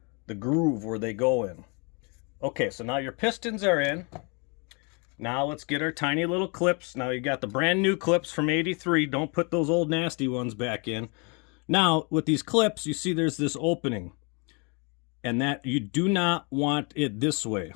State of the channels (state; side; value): quieter; right; 33.4 dB